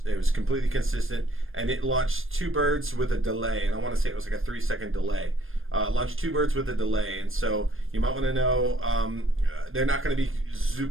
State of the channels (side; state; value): left; late; 0.60 ms